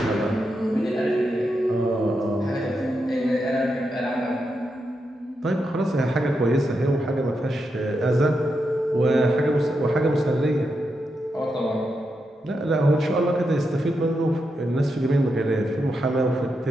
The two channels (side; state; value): both; normal; correlation 0.85